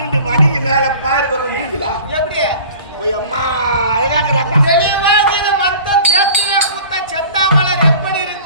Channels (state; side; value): inverted; both; correlation -0.44